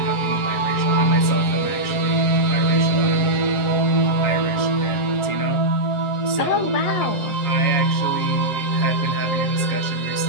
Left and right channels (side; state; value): right; late; 7.2 ms